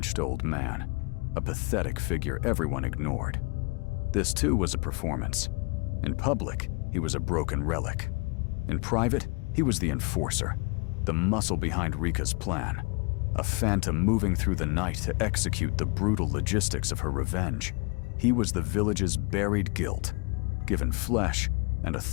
old man, a pathetic figure everyone ignored. This too was a performance. In public, he was a broken relic. In private, he was the enforcer, the muscle behind Rika's plan, a phantom moving through the night to execute the brutal logistics of her revenge. He was the village's buried guilt, given flesh and a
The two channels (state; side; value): quieter; right; 29.4 dB